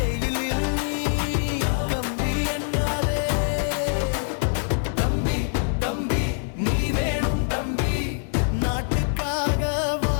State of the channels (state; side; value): silent; right; 62 dB below the other